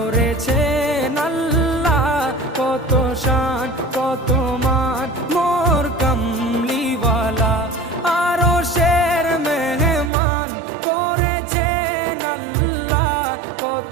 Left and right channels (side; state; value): left; drops out; at 10.1 s